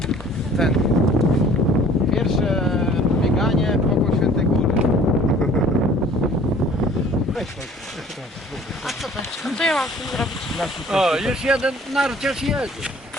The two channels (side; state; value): both; normal; correlation 0.52